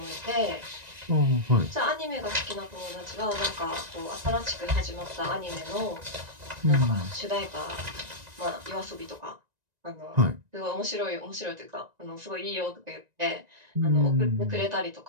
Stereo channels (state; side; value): late; left; 1.9 ms